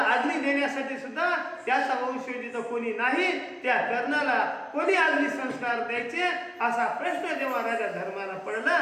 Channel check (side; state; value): both; identical; correlation 1.00